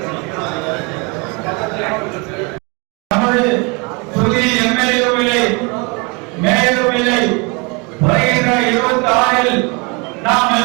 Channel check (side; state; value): left; quieter; 30.1 dB